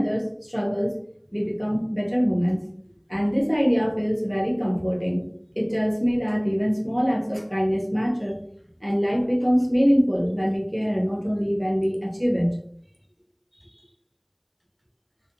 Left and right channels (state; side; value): identical; both; correlation 1.00